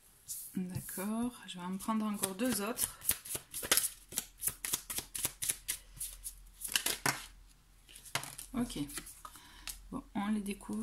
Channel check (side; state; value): both; identical; correlation 1.00